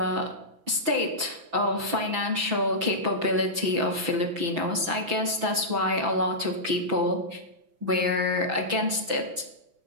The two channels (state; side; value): late; left; 6.0 ms